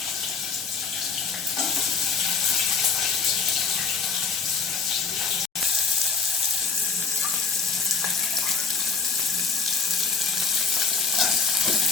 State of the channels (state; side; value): quieter; right; 5.1 dB